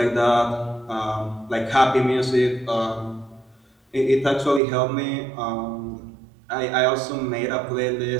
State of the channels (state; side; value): drops out; left; at 4.6 s